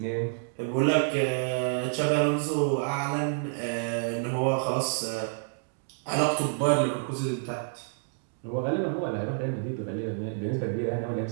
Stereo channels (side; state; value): left; silent; digital silence